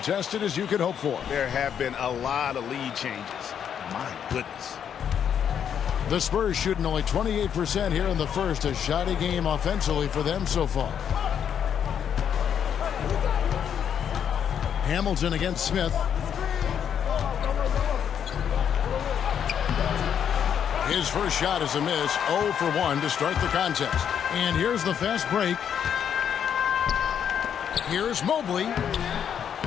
as you could hope for. There have been a lot of lead changes. My goodness. The Spurs shooting only 28% here in the first, a shoddy game offensively for them so far. Hamilton against Smith. His first shot is a miss, 0 for 1 to start the contest. And here's the fast break. Here's Mobley.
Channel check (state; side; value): quieter; right; 8.5 dB